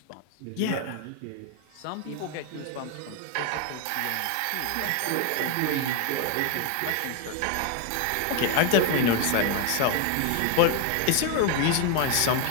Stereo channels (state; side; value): different; both; correlation 0.01